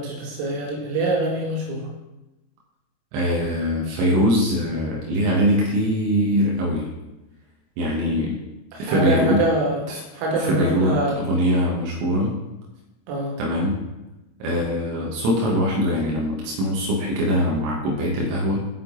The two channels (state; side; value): late; left; 26 ms